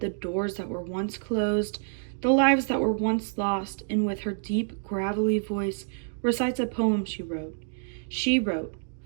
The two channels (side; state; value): left; silent; 60 dB below the other